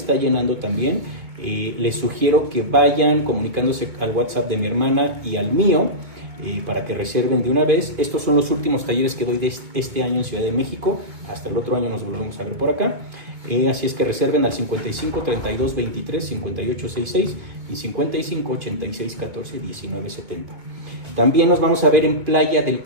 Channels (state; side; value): late; left; 2.2 ms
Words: llenando también. Les sugiero que vayan comunicándose al WhatsApp de mi hermana y al mío para que reserven de una vez. Estos son los últimos talleres que doy de este año en Ciudad de México. Hasta el otro año nos volvemos a ver por acá. Así es que reserven al 55 32 23 58 66 y 55 86 14 19 70. También nos vamos a ver en Playa del